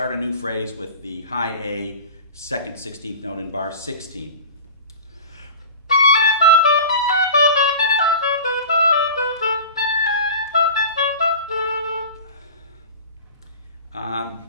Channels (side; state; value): both; inverted; correlation -0.35